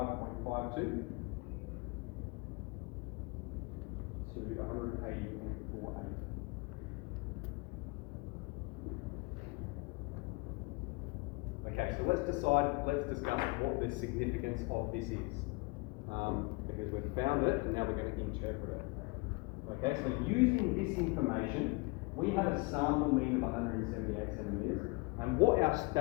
to 180.48. Okay, so let's discuss what the significance of this is. Because we've found it and now we're going to interpret it. Okay, so using this information, we have a sample mean of 178 centimetres. And what our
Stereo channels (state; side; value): quieter; right; 27.3 dB